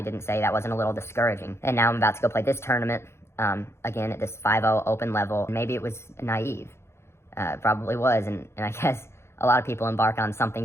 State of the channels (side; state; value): right; late; 0.13 ms